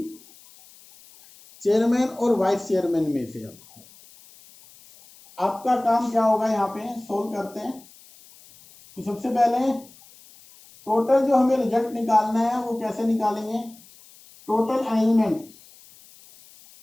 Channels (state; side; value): noise; left; hiss, 24 dB below the sound